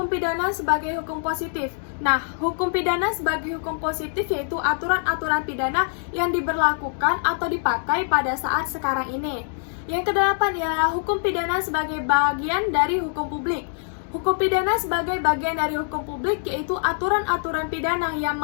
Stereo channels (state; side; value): silent; right; digital silence